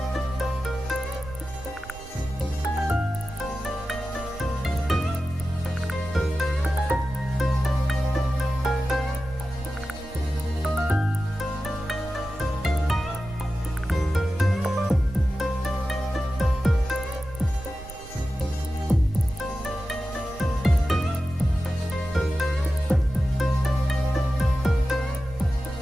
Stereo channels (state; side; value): noise; right; rumble, 15 dB below the sound